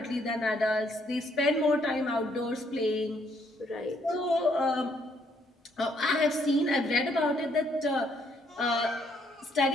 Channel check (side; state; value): both; normal; correlation 0.69